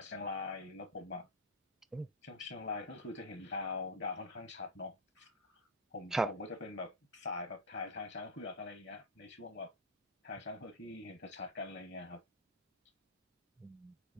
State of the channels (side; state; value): both; normal; correlation 0.03